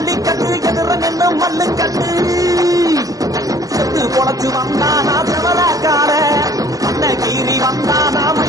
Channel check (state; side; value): late; left; 0.17 ms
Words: எதிர நின்று மல்லு கட்டு செத்து பொழைச்சு வந்தானா செவலக்கார அன்னகீரி வந்தானா